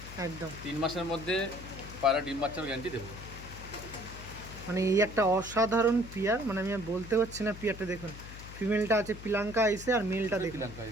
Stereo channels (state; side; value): noise; left; hum, 13 dB below the sound